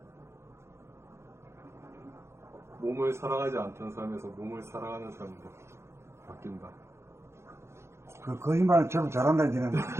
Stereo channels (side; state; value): left; late; 0.13 ms